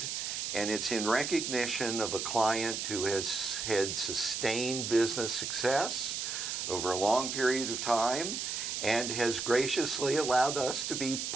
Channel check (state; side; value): noise; right; hiss, 3 dB below the sound